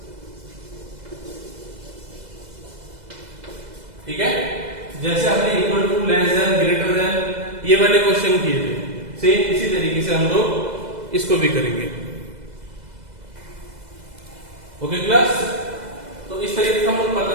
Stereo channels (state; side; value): late; left; 2.0 ms